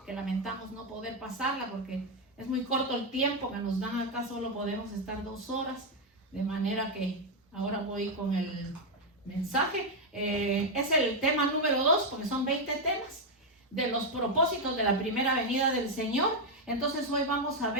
que lamentamos no poder pasarla porque es muy corto el tiempo que nos dan acá, solo podemos estar 2 horas, de manera que ahora voy con el mensaje. Es el tema número 2, porque son 20 temas de los propósitos de la primera venida del Señor. Entonces hoy vamos a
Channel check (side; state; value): both; normal; correlation 0.03